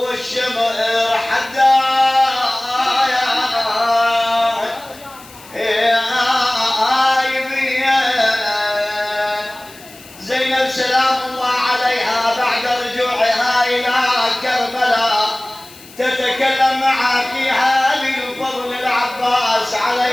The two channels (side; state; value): left; noise; hiss, 21 dB below the sound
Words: حدايبيه زينب سلام الله عليها بعد رجوعها الى كربلاء تتكلم مع اخيها ابي الفضل العباس